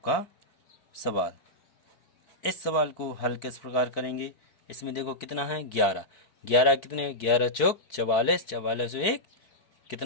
सवाल, इस सवाल को हल किस प्रकार करेंगे, इसमें देखो कितना है 11, 11 कितने 11 चौक 44, 44 1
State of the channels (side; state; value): right; late; 4.5 ms